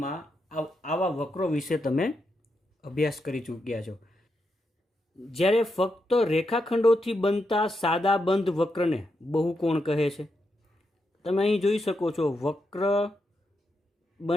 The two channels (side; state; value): both; normal; correlation 0.84